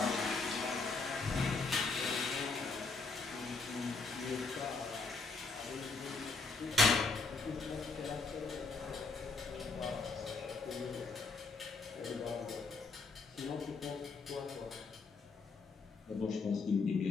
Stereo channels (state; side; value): quieter; right; 4.1 dB